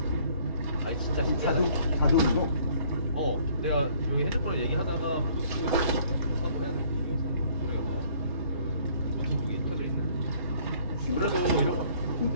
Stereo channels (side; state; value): both; inverted; correlation -0.59